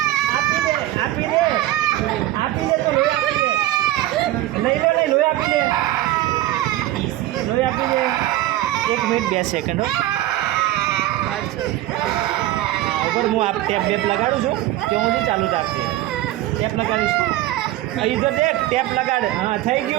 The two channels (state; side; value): quieter; left; 15.1 dB